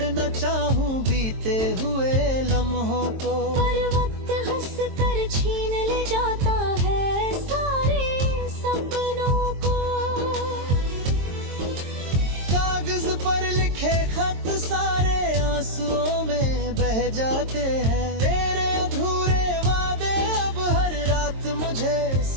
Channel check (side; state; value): left; late; 22 ms